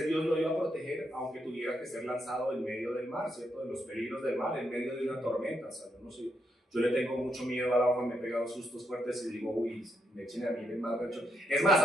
Dios lo iba a proteger, aunque tuviera que ser lanzado en medio del mar, ¿cierto? De los peligros del mar, en medio de una tormenta. O sea, yo no sé, yo le tengo mucho miedo al agua, me he pegado sustos fuertes y digo, uy, me echen a mí en el mar. Es más,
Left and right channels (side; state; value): both; normal; correlation 0.79